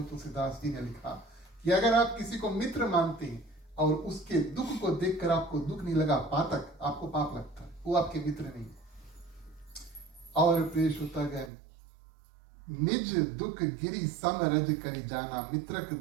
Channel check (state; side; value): drops out; left; at 11.5 s